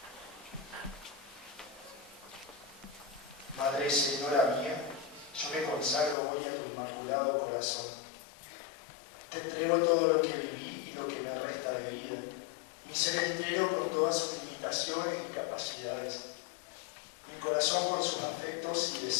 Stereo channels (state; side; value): drops out; right; at 6.2 s